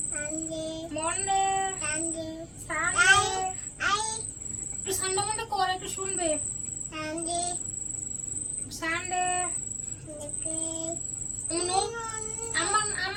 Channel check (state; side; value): identical; both; correlation 1.00